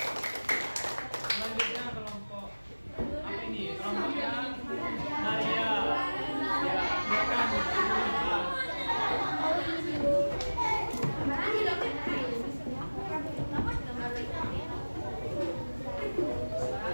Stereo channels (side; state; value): both; inverted; correlation -1.00